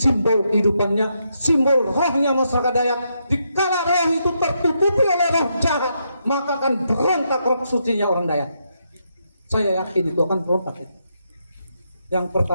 kehidupannya, simbol rohnya masyarakat Dayak. Dikala roh itu tertutupi oleh roh jahat, maka akan berontak roh sucinya orang Dayak. Saya yakin itu akan berontak. Yang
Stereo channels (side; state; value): both; inverted; correlation -0.80